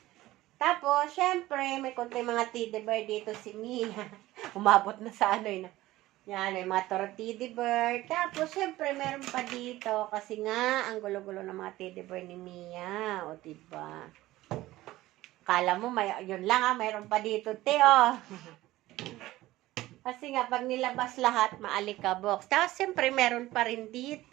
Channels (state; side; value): quieter; left; 16.8 dB